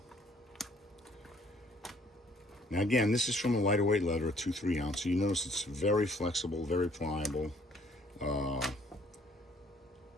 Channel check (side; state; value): both; normal; correlation 0.60